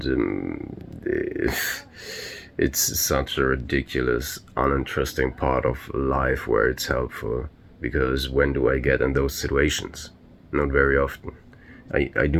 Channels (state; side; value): identical; both; correlation 1.00